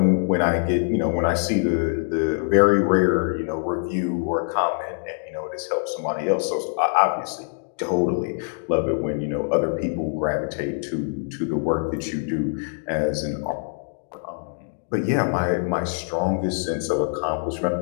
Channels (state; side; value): silent; right; digital silence